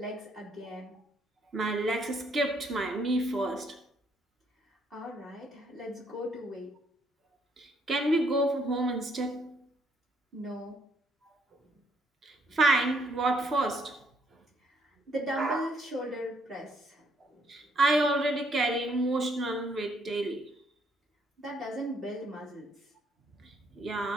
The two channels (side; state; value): both; normal; correlation 0.70